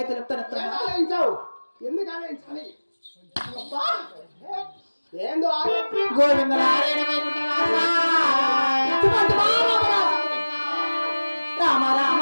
తెలుపుతాను ఆలోచించావు. ఎందుకు ఆలోచించాలి? ఏందో గోవింద రామ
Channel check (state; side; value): inverted; both; correlation -1.00